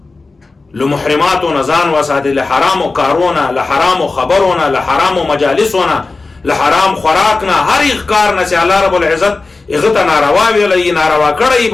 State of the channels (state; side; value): quieter; right; 3.7 dB